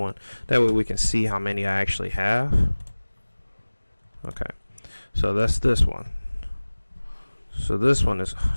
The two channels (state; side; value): inverted; both; correlation -1.00